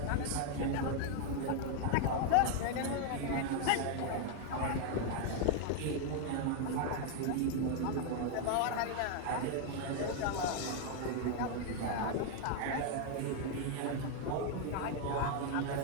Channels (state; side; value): different; both; correlation 0.00